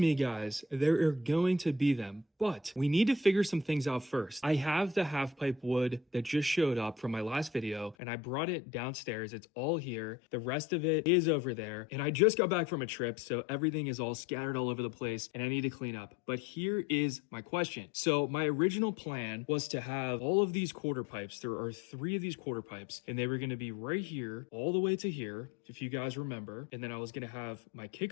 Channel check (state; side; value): drops out; right; at 8.0 s